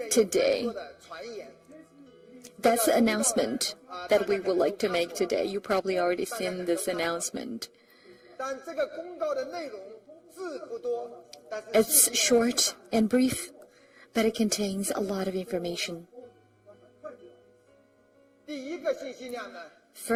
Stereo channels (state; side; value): identical; both; correlation 1.00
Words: today. That's the announcement that we would like to make today. You probably already seen this announcement. It's short and brief, but it contains a lot of information.